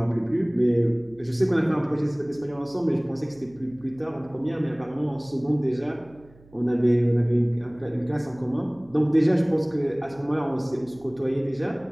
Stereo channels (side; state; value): right; noise; hum, 26 dB below the sound